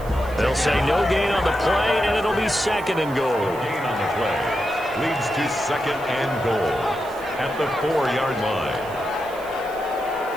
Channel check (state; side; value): noise; right; hiss, 21 dB below the sound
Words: They'll say no gain on the play, and it'll be 2nd and goal. Gain on the play leads to 2nd and goal at the 4-yard line.